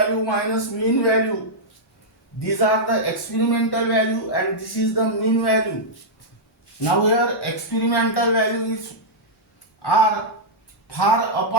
minus mean value. These are the experimental value and this is the mean value. Now here experimental values are far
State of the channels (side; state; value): both; normal; correlation -0.08